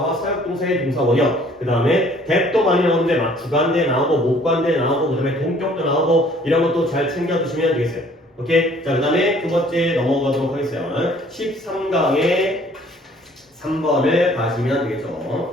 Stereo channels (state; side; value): normal; both; correlation 0.57